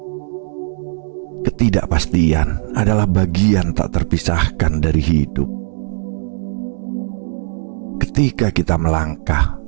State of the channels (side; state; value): left; silent; digital silence